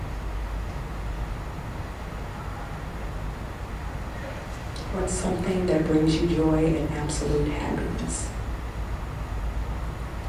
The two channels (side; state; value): both; identical; correlation 1.00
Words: What's something that brings you joy and absolute happiness?